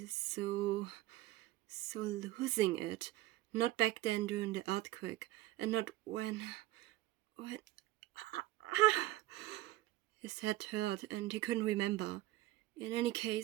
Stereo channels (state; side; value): quieter; left; 16.7 dB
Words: so losing it. Not back then during the earthquake, and not when... His head hurt, and he couldn't remember. In any